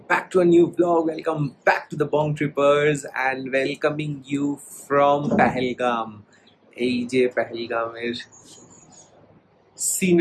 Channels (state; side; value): identical; both; correlation 1.00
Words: back to a new vlog. Welcome back to the Bong Trippers and welcoming you from Pahalgam. এই যে পেহেলগামের